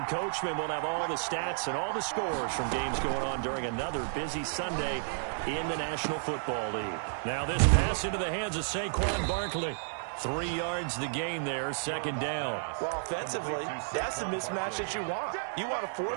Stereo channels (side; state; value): left; silent; digital silence